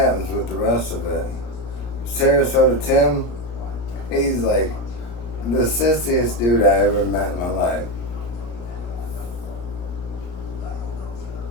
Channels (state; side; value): late; right; 34 ms